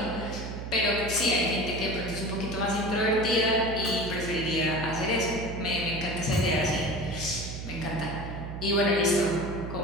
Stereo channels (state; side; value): noise; right; hum, 7 dB below the sound